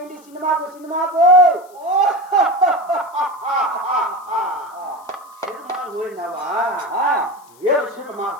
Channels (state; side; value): noise; left; hiss, 28 dB below the sound